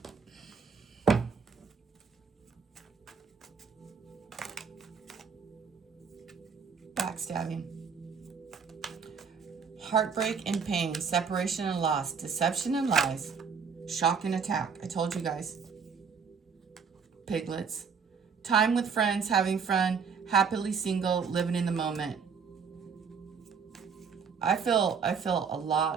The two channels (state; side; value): quieter; left; 6.0 dB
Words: Backstabbing. Heartbreak and pain, separation and loss, deception and lies, shock and attack. I told you guys. Piglets. Time with friends, having fun, happily single, living in the moment. I feel a